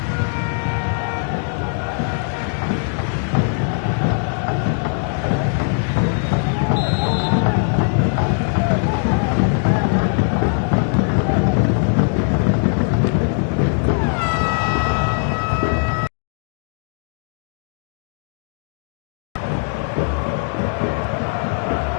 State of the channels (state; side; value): silent; right; 58 dB below the other